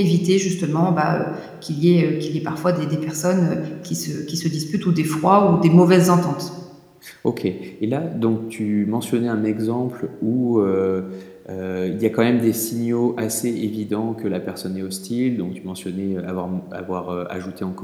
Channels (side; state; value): both; identical; correlation 1.00